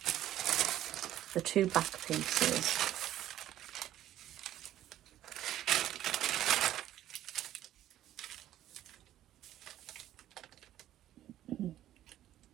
the two back pieces.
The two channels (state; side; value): quieter; left; 12.7 dB